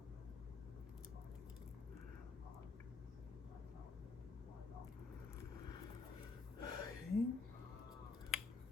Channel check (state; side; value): quieter; right; 4.4 dB